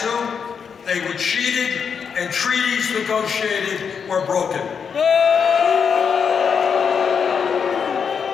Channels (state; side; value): quieter; right; 6.6 dB